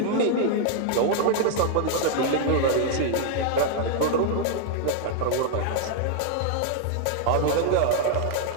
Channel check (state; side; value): different; both; correlation 0.00